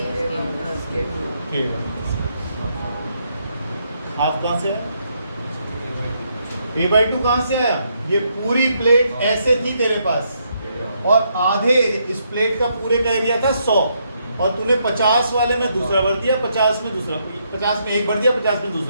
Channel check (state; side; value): inverted; both; correlation -0.76